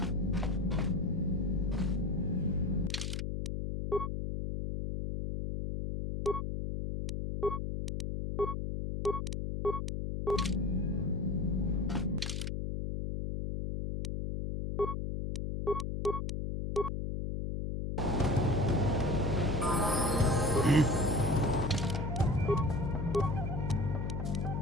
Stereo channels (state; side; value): noise; left; hum, 2 dB below the sound